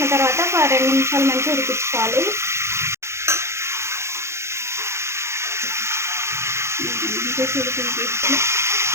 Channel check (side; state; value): left; late; 0.13 ms